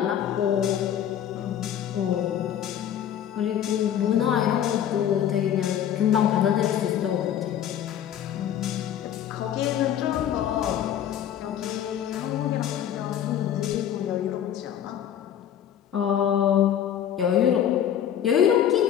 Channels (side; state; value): right; quieter; 10.0 dB